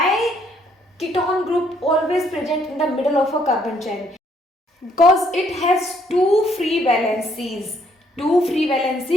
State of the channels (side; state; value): both; normal; correlation 0.68